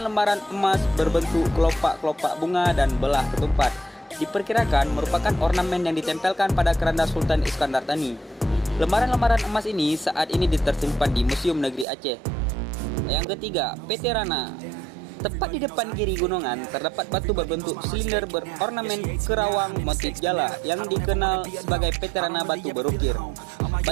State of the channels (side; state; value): left; drops out; at 11.9 s